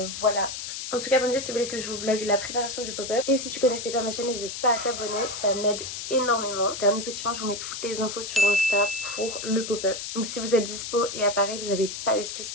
voilà. En tout cas, abonnez-vous si vous voulez que je vous vlog la préparation du pop-up. Et si tu connaissais pas ma chaîne, n'hésite pas à t'abonner, ça m'aide énormément. Dernier petit point, je vous mets toutes les infos sur Insta pour le pop-up. Donc si vous êtes dispo et à Paris, vous n'avez pas d'excuse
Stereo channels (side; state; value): left; noise; hiss, 7 dB below the sound